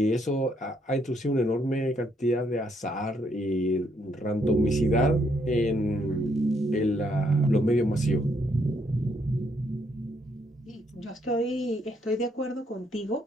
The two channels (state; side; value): normal; both; correlation 0.73